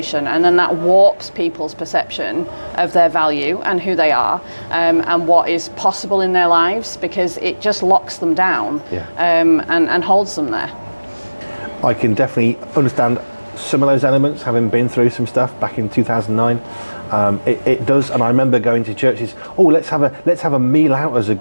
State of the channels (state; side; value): inverted; both; correlation -1.00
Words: and then that warps people's perception of their value and who they are, and what is possible in their lives, because it just locks them down, and holds them there. I can definitely understand some of those elements, having been through some stuff back in 2009. It does, and I remember going to churches. Oh, let's have a meal out as a